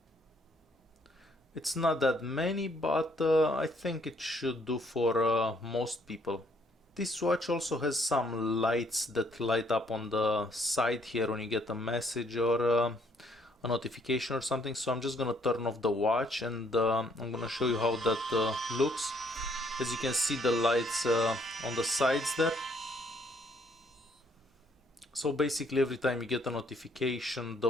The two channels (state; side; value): normal; both; correlation 0.67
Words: It's not that many, but I think it should do for most people. This watch also has some lights that light up on the side here when you get a message or a notification or something. So I'm just gonna turn off the watch, and I'm gonna show you how that looks. As you can see, the lights on the sides there. So basically every time you get a notification,